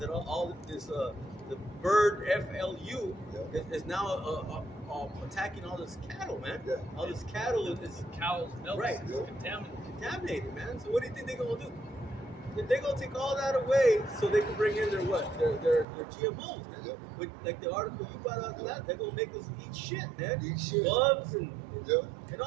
all this, the bird FLU is now attacking all this cattle, man. Yeah. All this cattle is Cows, milk, Right. is contaminated. contaminated, man. So what do you think they're gonna do? They're gonna take all that away so they can bring in their what? Their GMOs, man. Yep. With, like the article you brought out that they're gonna make us eat shit, man. Eat shit. Bugs and yeah, and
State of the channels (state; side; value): drops out; left; at 15.9 s